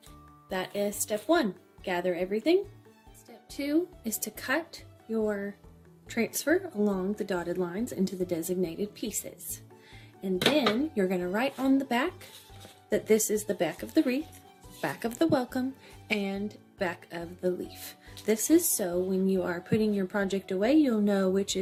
That is step 1. Gather everything. Step 2 is to cut your transfer along the dotted lines into the designated pieces. And then you're going to write on the back that this is the back of the wreath, back of the welcome, and back of the leaf. This is so when you are putting your project away, you'll know which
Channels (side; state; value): both; identical; correlation 1.00